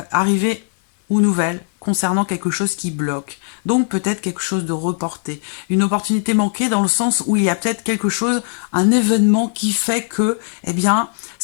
ou nouvelles, concernant quelque chose qui bloque. Donc peut-être quelque chose de reporté. Une opportunité manquée dans le sens où il y a peut-être quelque chose, un événement qui fait que, eh bien,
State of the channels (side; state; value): right; silent; 58 dB below the other